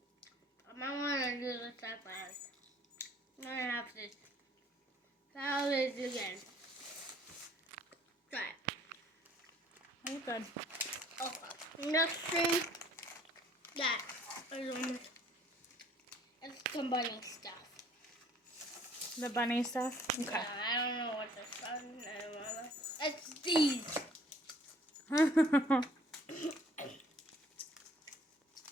I might want to do this that fast. I'm going to have to try this again. Try it. Oh, good. Okay. Next thing, that is it's the bunny stuff. The bunny stuff? Okay. Yeah, I don't know what this one is. It's these.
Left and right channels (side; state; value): both; normal; correlation 0.58